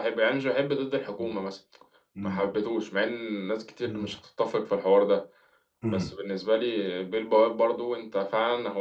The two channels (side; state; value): both; identical; correlation 1.00